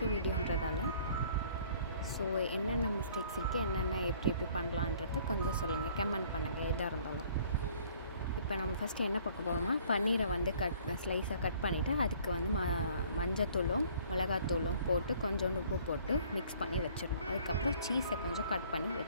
வீடியோன்றதால ஸோ என்னென்ன மிஸ்டேக்ஸ் இருக்குது, என்னென்ன எப்படி பண்ணலான்றத கொஞ்சம் சொல்லுங்கள், கமெண்ட் பண்ணுங்கள் எதாக இருந்தாலும். இப்போ நம்ம ஃபஸ்ட்டு என்ன பார்க்க போகிறோம்னா, பன்னீரை வந்து ஸ்லைஸாக கட் பண்ணிவிட்டு அதுக்கு வந்து மஞ்சத்தூளும் மிளகாத்தூளும் போட்டு கொஞ்சோண்டு உப்பு போட்டு மிக்ஸ் பண்ணி வச்சிடணும். அதுக்கப்புறம் சீஸை கொஞ்சம் கட் பண்ணி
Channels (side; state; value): both; inverted; correlation -0.56